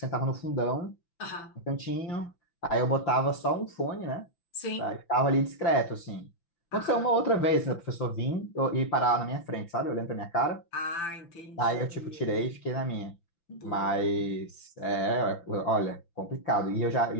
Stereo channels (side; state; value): right; late; 5.9 ms